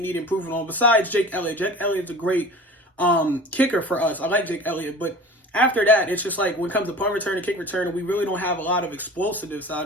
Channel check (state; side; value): normal; both; correlation 0.39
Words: need improvement on besides Jake Elliott. Jake Elliott's a great kicker for us. I like Jake Elliott, but after that, it's just like when it comes to punt return and kick return, we really don't have a lot of explosiveness